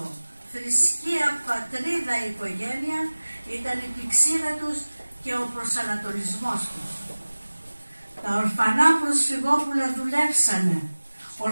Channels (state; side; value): inverted; both; correlation -1.00